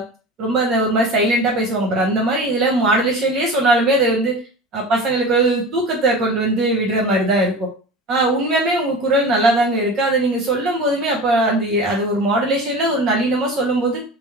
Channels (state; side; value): normal; both; correlation 0.33